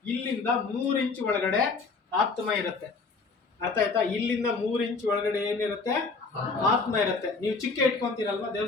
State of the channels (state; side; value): quieter; right; 4.2 dB